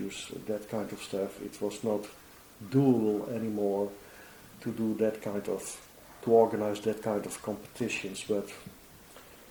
that kind of stuff. It was not doable anymore to organize that kind of competitions, but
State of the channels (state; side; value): identical; both; correlation 1.00